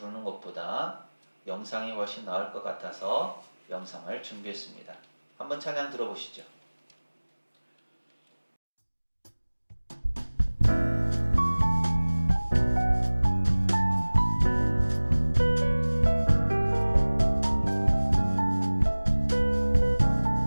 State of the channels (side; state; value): both; inverted; correlation -1.00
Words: 것보다 영상이 훨씬 나을 것 같아서 영상을 준비했습니다. 한번 찬양 들어보시죠.